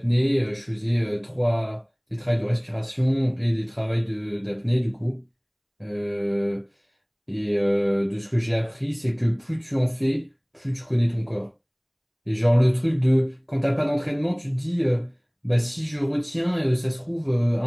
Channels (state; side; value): identical; both; correlation 1.00